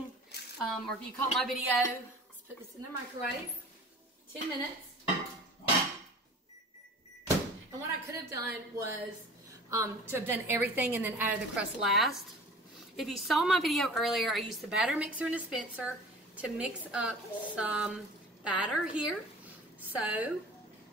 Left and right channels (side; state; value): both; normal; correlation 0.43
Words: or if you caught my video, let's put this in the microwave. 10 minutes. And what I could have done was to have done everything and then added the crust last. If you saw my video earlier, I used the batter mixer and dispenser to mix up some batter here. So